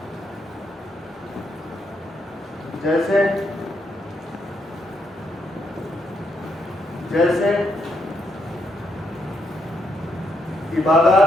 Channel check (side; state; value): both; normal; correlation 0.77